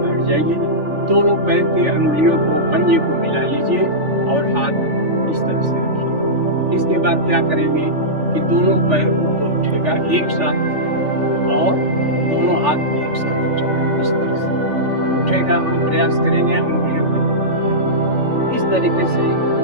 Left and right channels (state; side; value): late; left; 3.4 ms